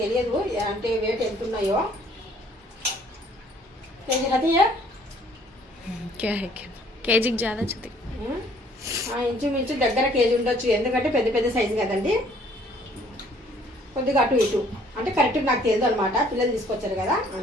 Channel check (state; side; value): normal; both; correlation 0.59